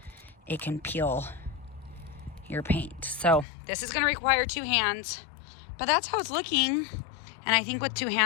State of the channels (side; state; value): right; drops out; at 3.5 s